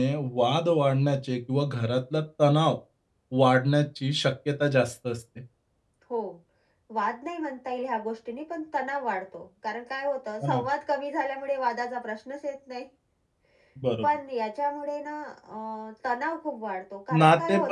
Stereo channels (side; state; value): both; identical; correlation 1.00